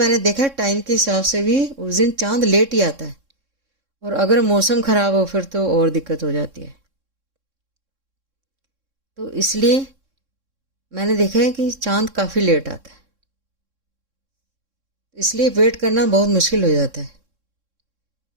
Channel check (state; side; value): late; left; 3.6 ms